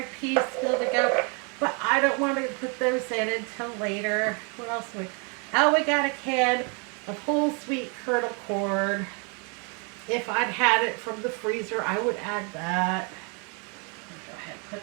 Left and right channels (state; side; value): quieter; left; 35.4 dB